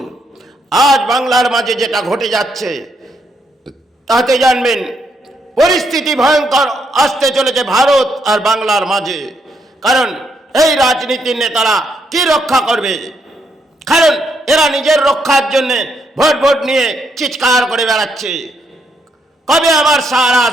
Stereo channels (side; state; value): both; normal; correlation 0.76